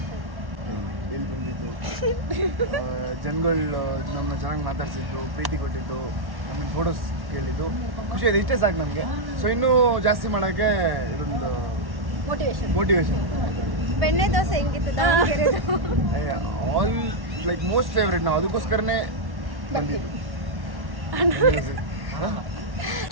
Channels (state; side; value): late; left; 1.1 ms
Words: ಇಲ್ಲಿ ಬಂದಿದ್ದು ಜನಗಳು ನಮ್ಮನ್ನ ಚೆನ್ನಾಗಿ ಮಾತಾಡ್ಸಿದ್ದು, ಪ್ರೀತಿ ಕೊಟ್ಟಿದ್ದು, ನಮಗೆ ಫೋಟೋಸ್ ಕೇಳಿದ್ದು, ಖುಷಿ ಆಯಿತು. ಇಷ್ಟೇ ಸಾಕು ನಮಗೆ. ಸೊ ಇನ್ನೂ ಜಾಸ್ತಿ ಮಾಡೋಕ್ಕೆ ಇದೊಂದು ಮೋಟಿವೇಶನ್. ಬೆಣ್ಣೆ ದೋಸೆ ಹೆಂಗಿತ್ತು? All like most favourite. ನಾವು ಅದಕ್ಕೋಸ್ಕರನೇ ಬಂದಿದ್ದು.